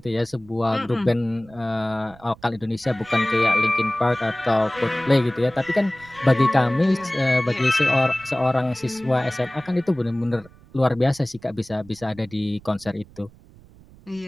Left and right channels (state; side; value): noise; right; rumble, 24 dB below the sound